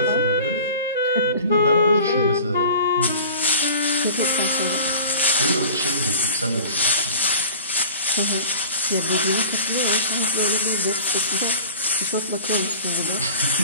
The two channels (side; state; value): both; inverted; correlation -0.40